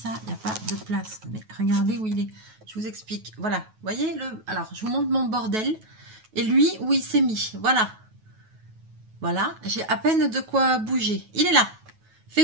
Il n'y a pas de place. Mais regardez où il est. Je vous explique. Voilà. Vous voyez le... Alors, je vous montre mon bordel. Et lui, où il s'est mis. Voilà. Voilà. J'ai à peine de quoi bouger. Il est là.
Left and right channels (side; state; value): left; late; 9.3 ms